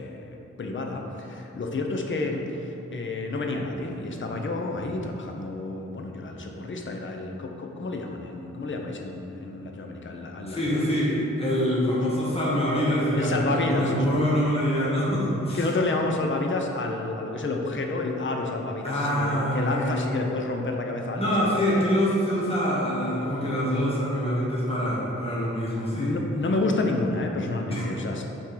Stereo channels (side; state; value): both; normal; correlation 0.50